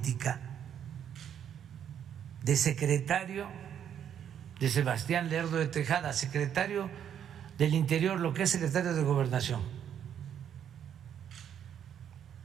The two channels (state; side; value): quieter; left; 9.1 dB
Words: de secretario de Sebastián Lerdo de Tejada, secretario del Interior, lo que es secretario de Gobernación.